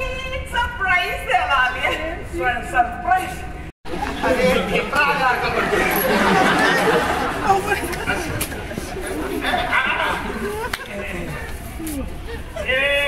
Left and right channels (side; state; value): both; identical; correlation 1.00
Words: सरप्राईज द्यायला आली आहे. सरप्राईज? अरे खेपरा आला का